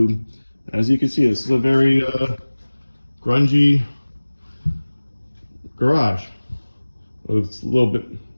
As you can see, this is a very grungy garage. It's a little bit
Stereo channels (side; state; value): both; inverted; correlation -1.00